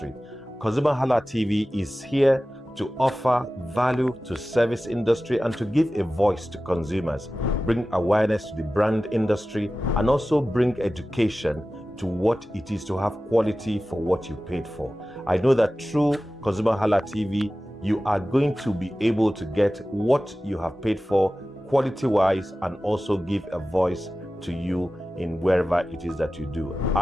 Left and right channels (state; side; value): normal; both; correlation 0.95